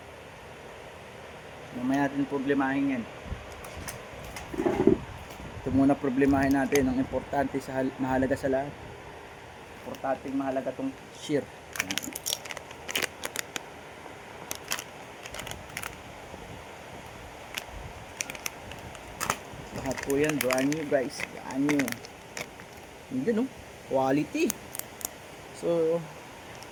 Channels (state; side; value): identical; both; correlation 1.00